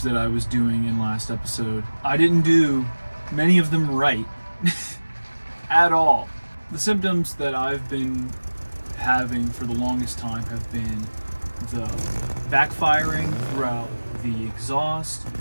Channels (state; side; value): inverted; both; correlation -1.00